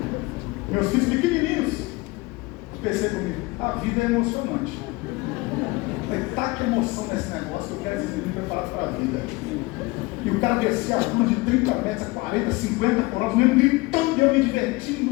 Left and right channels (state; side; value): quieter; right; 23.1 dB